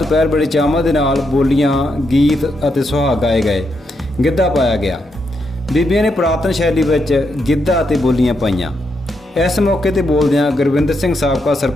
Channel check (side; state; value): both; normal; correlation 0.81